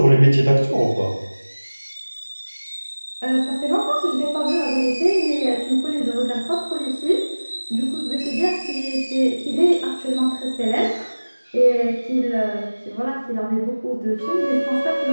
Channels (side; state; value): both; inverted; correlation -1.00